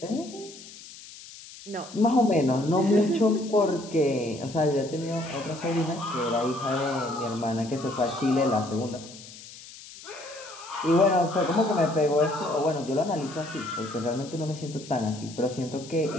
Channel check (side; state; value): left; noise; hiss, 17 dB below the sound